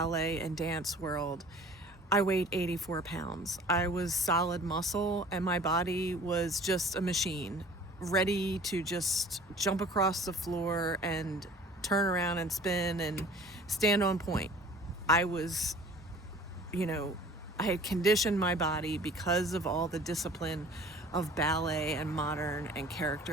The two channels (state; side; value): normal; both; correlation 0.47